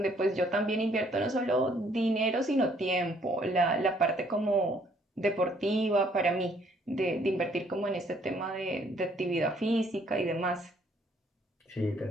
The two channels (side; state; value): both; normal; correlation 0.64